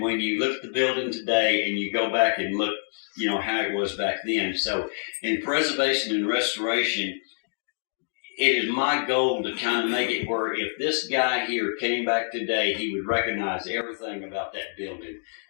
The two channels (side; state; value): right; silent; digital silence